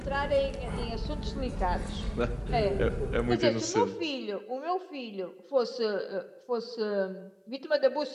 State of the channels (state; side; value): identical; both; correlation 1.00